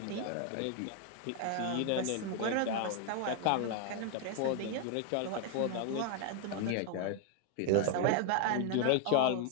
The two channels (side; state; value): both; different; correlation 0.00